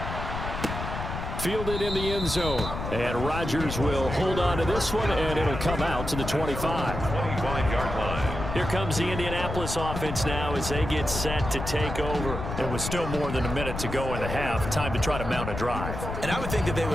Fielded in the end zone. And Rodgers will hold on to this one, and it'll come out to the 25. 25-yard line. Here comes the Indianapolis offense now as they get set to take over. It was still more than a minute to go in the half. Time to try to mount a drive. And I would think that they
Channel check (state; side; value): noise; left; rumble, 6 dB below the sound